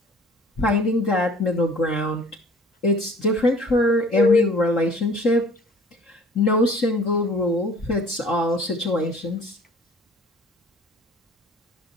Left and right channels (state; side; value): normal; both; correlation 0.50